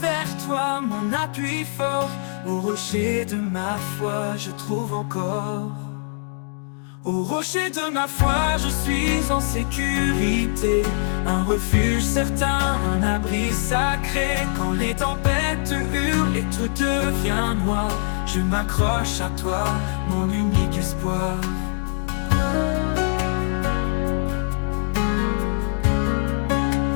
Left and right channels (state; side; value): silent; right; digital silence